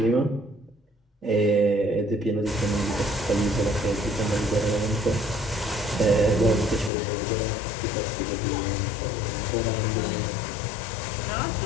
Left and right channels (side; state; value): right; drops out; at 6.9 s